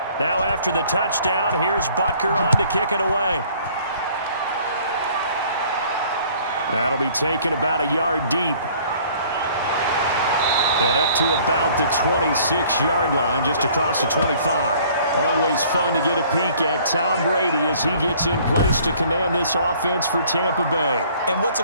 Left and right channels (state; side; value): inverted; both; correlation -0.55